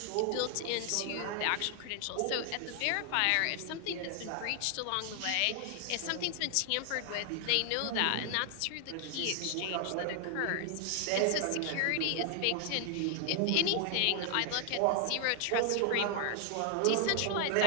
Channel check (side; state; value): both; different; correlation 0.00